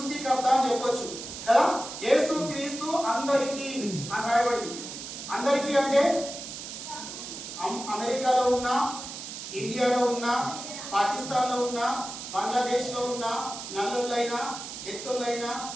అని చెప్పొచ్చు కదా. యేసు క్రీస్తు అందరికీ అని రాయబడింది. అందరికీ అంటే అమెరికాలో ఉన్న, ఇండియాలో ఉన్న, పాకిస్తాన్లో ఉన్న, బంగ్లాదేశ్లో ఉన్న, నల్లులైనా ఎత్తులైనా,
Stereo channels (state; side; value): noise; right; hiss, 9 dB below the sound